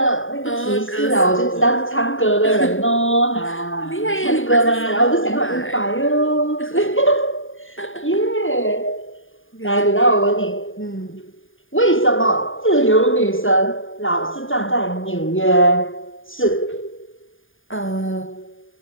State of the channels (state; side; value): late; right; 0.58 ms